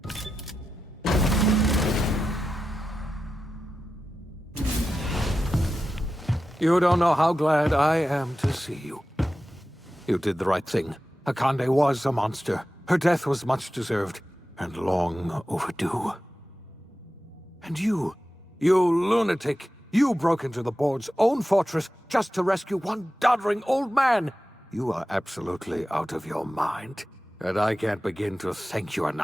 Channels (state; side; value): normal; both; correlation 0.92